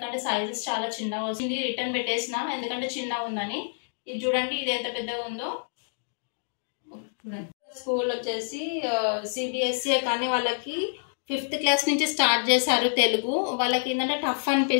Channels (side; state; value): right; silent; digital silence